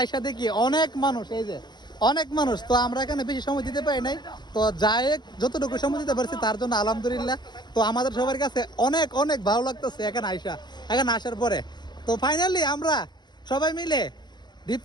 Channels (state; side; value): late; right; 0.21 ms